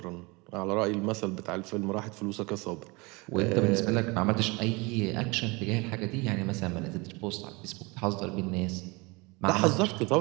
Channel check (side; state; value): left; quieter; 26.1 dB